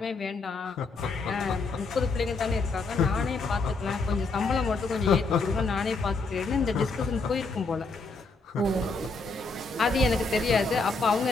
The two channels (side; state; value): right; quieter; 3.8 dB